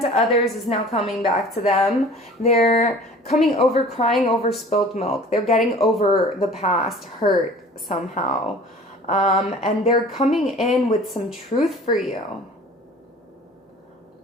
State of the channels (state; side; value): normal; both; correlation 0.45